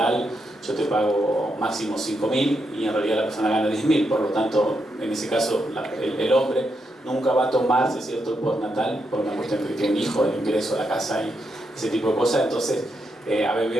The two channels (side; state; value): both; normal; correlation 0.82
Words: yo te pago máximo 5.000 y en realidad la persona gana 10.000, por lo tanto en ese caso el hombre nunca va a tomarse, ¿cierto?, el postnatal por una cuestión de que tiene un hijo, el ingreso a la casa y ese tipo de cosas. Entonces ABB